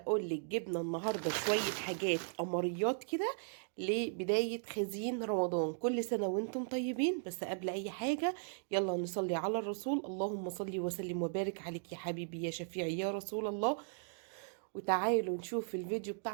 جبنا النهارده شويه حاجات قمريات كده لبدايه خزين رمضان. كل سنه وانتم طيبين. بس قبل اي حاجه يلا نصلي على الرسول. اللهم صل وسلم وبارك عليك يا حبيبي يا شفيعي يا رسول الله. وتعالوا نشوف الفيديو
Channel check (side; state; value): left; silent; digital silence